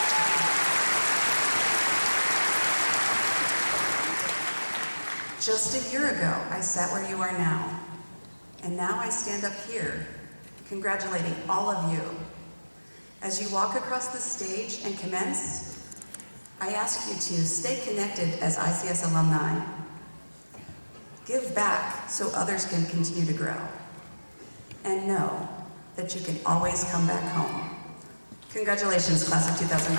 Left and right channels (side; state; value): both; inverted; correlation -1.00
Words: Just a year ago, I sat where you are now, and now I stand up here, congratulating all of you. As you walk across the stage and commence, I ask you to stay connected as ICS alumni. Give back so others can continue to grow. And know that you can always come back home. Congratulations, class of